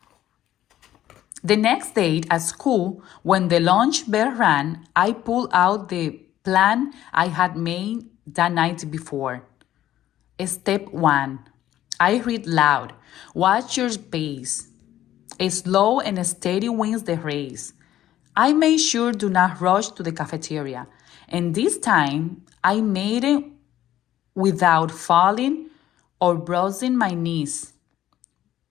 The next day at school, when the lunch bell rang, I pulled out the plan I had made the night before. Step 1. I read loud. Watch your pace. Slow and steady wins the race. I made sure do not rush to the cafeteria. And this time, I made it without falling or bruising my knees.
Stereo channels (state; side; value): quieter; right; 12.7 dB